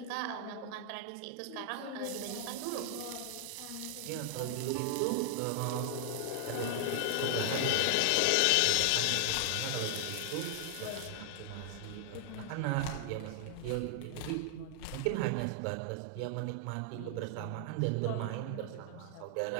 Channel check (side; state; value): both; different; correlation 0.00